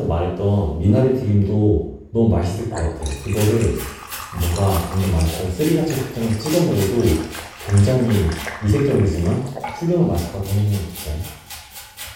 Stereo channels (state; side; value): identical; both; correlation 1.00